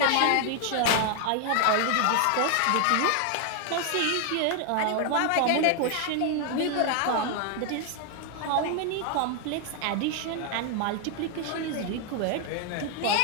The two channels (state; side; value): different; both; correlation 0.00